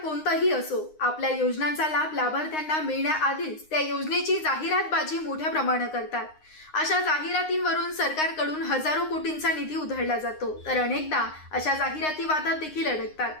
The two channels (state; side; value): late; right; 9.7 ms